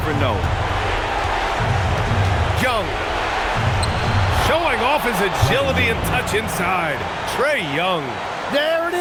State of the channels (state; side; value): identical; both; correlation 1.00